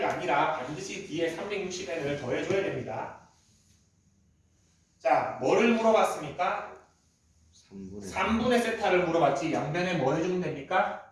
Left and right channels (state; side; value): identical; both; correlation 1.00